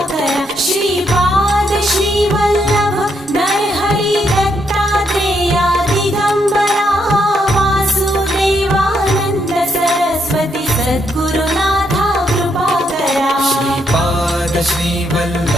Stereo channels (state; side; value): normal; both; correlation 0.77